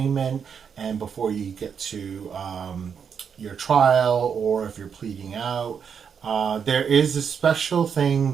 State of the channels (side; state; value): left; quieter; 7.0 dB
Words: and before you get to your trial, or if you're pleading out. There is a special thing